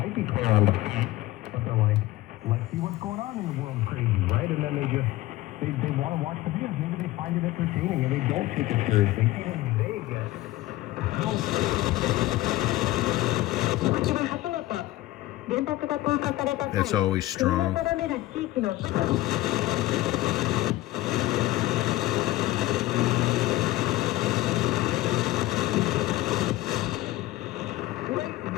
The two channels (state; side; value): quieter; right; 17.0 dB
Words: be clear on the fence, but they're like, let's see what's going on in the world crazy, right? And then they want to watch the videos. Maybe they find it entertaining and they don't take it seriously. Even they get That's always strong.